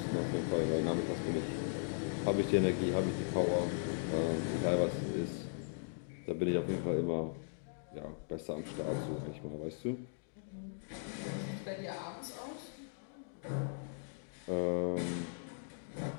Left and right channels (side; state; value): right; silent; digital silence